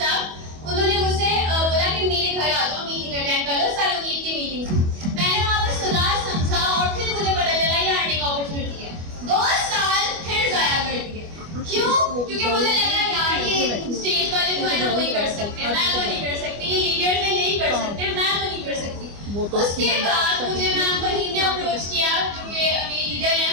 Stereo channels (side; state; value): left; late; 25 ms